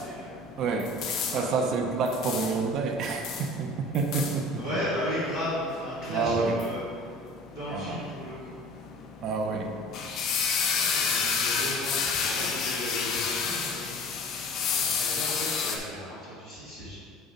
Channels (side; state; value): both; normal; correlation 0.43